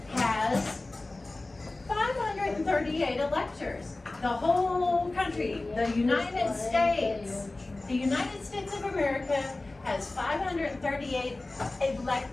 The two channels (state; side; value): quieter; right; 3.0 dB